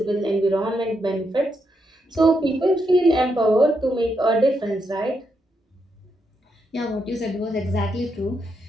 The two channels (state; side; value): normal; both; correlation 0.81